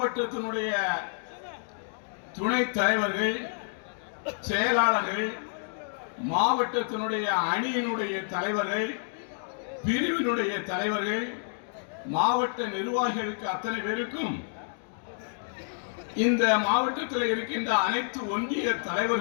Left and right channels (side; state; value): right; silent; digital silence